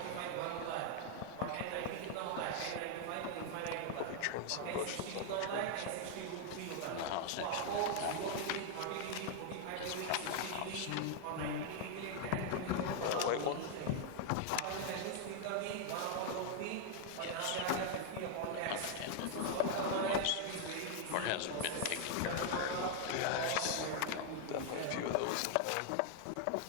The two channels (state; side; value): different; both; correlation 0.00